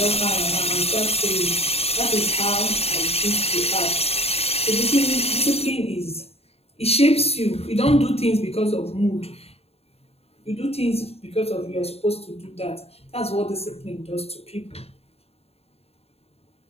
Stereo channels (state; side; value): late; right; 0.29 ms